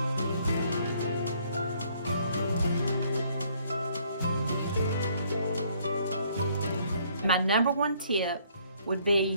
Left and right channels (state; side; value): inverted; both; correlation -0.64